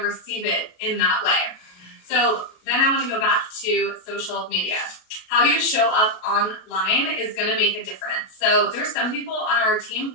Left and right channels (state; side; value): late; right; 33 ms